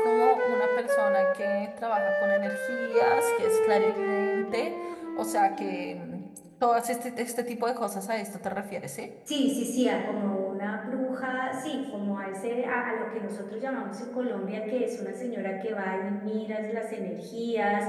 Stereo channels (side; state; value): both; identical; correlation 1.00